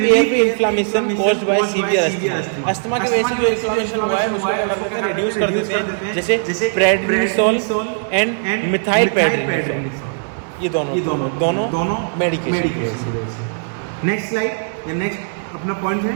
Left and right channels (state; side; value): silent; left; 67 dB below the other